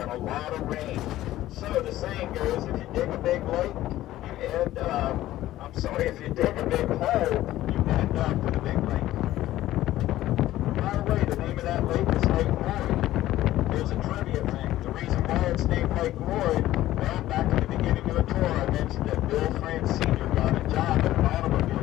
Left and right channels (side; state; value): right; quieter; 14.7 dB